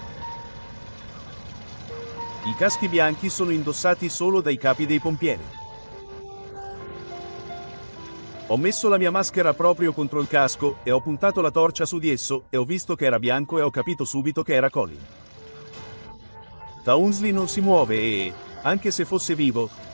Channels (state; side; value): inverted; both; correlation -1.00